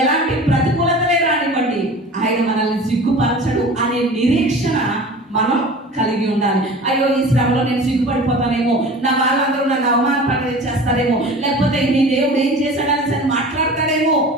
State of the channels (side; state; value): both; normal; correlation 0.39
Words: ఎలాంటి ప్రతికూలతలే రానివ్వండి, ఆయన మనల్ని సిగ్గుపరచడు అనే నిరీక్షణ మనం కలిగి ఉండాలి. అయ్యో ఈ శ్రమలో నేను సిగ్గుపడిపోతానేమో, నా వాళ్ళందరూ నన్ను అవమానపడి చేస్తారేమో, లేకపోతే నీ దేవుడు ఏం చేశాడని సరే మాట్లాడతాడేమో